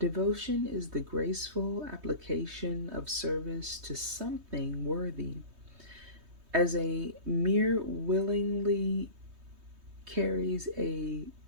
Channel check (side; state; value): left; late; 3.2 ms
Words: is the graceful application of service to something worthy. As a mere willingly carries a